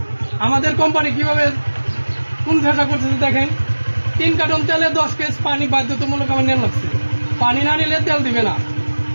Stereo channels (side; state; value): both; inverted; correlation -1.00